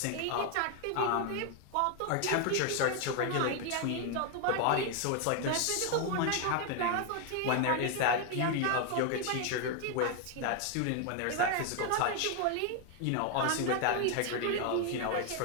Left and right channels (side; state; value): both; different; correlation 0.01